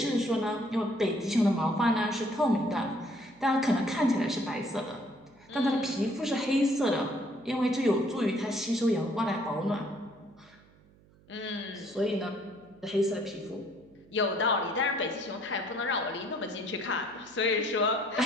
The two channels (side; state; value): right; noise; hum, 28 dB below the sound